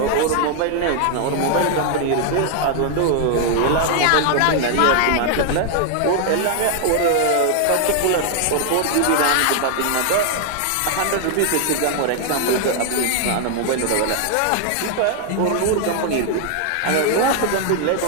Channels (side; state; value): both; different; correlation 0.00